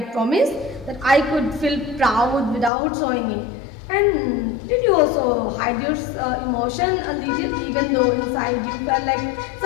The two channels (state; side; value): drops out; right; at 2.7 s